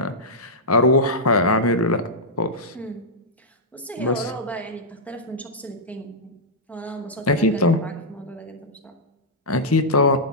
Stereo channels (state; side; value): normal; both; correlation -0.09